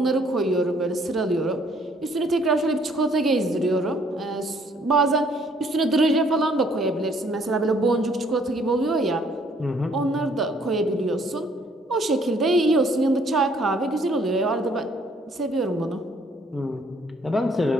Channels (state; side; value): normal; both; correlation 0.63